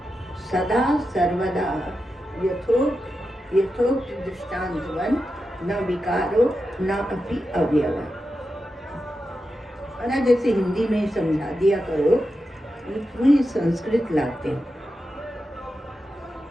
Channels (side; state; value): both; normal; correlation 0.89